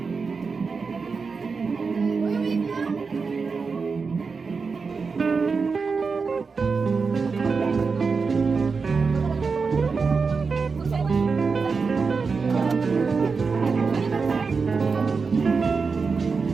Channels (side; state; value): left; quieter; 4.9 dB